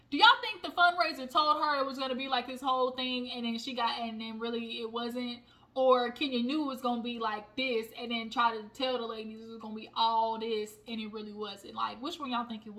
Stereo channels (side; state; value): both; identical; correlation 1.00